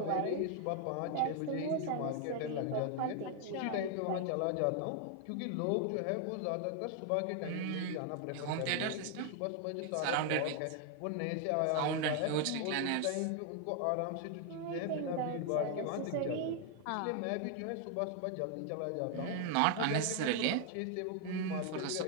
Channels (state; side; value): different; both; correlation 0.00